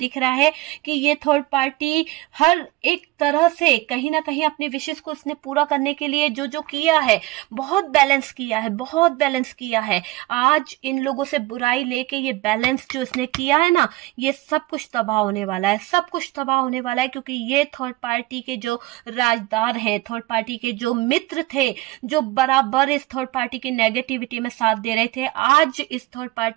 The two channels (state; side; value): quieter; left; 19.1 dB